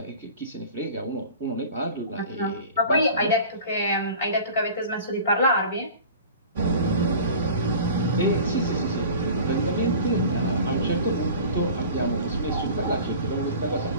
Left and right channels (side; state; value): both; inverted; correlation -0.40